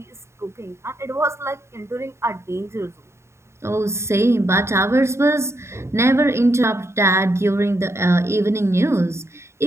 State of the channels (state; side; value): late; left; 0.13 ms